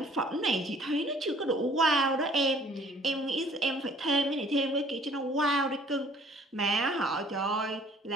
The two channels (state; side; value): normal; both; correlation 0.56